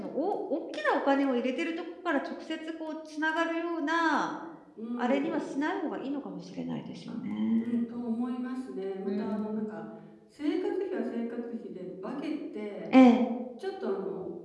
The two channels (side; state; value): both; identical; correlation 1.00